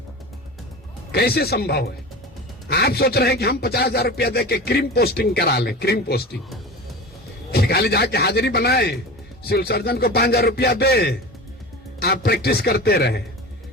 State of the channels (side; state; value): both; normal; correlation 0.32